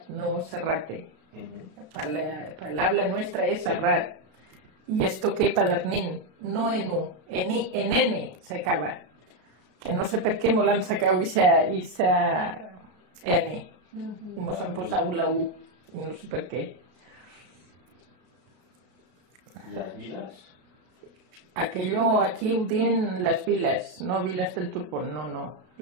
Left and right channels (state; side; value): late; left; 33 ms